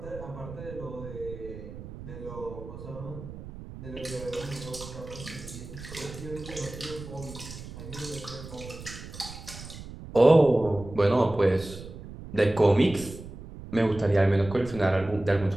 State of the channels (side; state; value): right; noise; rumble, 13 dB below the sound